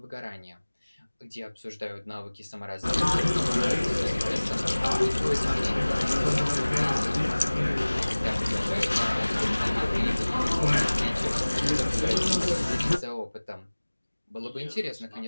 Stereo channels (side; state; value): both; inverted; correlation -1.00